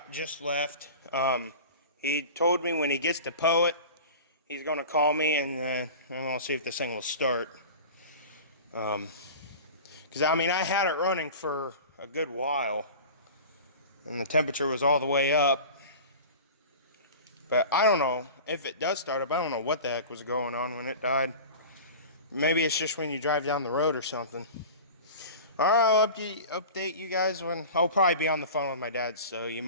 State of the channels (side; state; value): both; inverted; correlation -0.36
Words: left. He told me when he gets to Poet, he's gonna call me and then I'm gonna see if this thing will start. Because I mean, I had it running for a good while and the temperature was all the way up. But I don't know if it does start up. I don't know what the heck was going on when it died. Maybe it's just when you drive down the road or something. Alright, I'll update you guys when I'll probably be on the phone with my dad, so you